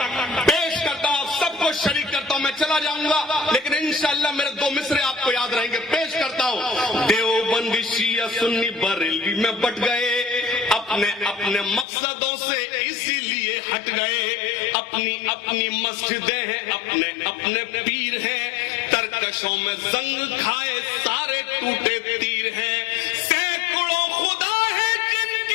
पेश करता हूं, सबको शरीक करता हूं। मैं चला जाऊंगा लेकिन इंशाअल्लाह मेरे 2 मिसरे आपको याद रहेंगे। पेश करता हूं। देवबंदी शिया सुन्नी बरेलवी में बट गए, अपने अपने मकसदों से इसीलिए हट गए। अपनी अपनी मस्जिदें हैं, अपने अपने पीर हैं, तरकशों में जंग खाए सारे टूटे तीर हैं। सैकड़ों खुदा है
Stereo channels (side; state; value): right; drops out; at 11.9 s